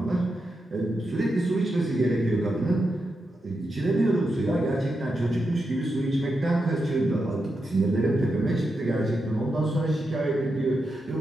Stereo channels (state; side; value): normal; both; correlation 0.86